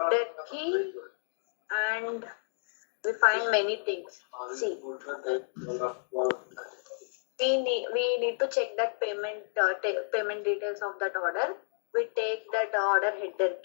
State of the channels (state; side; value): silent; right; digital silence